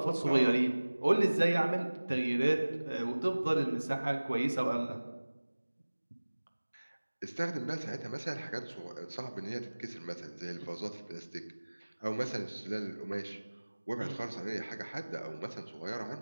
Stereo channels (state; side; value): inverted; both; correlation -1.00